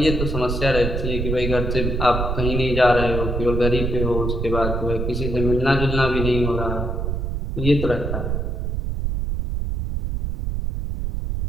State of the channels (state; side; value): noise; right; rumble, 2 dB below the sound